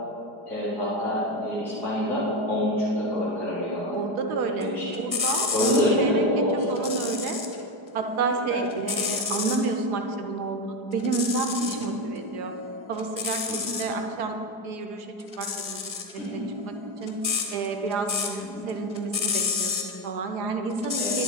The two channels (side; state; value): left; late; 4.8 ms